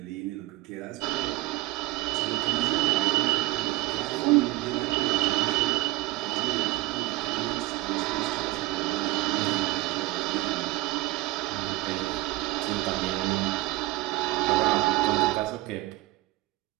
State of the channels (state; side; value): quieter; left; 19.3 dB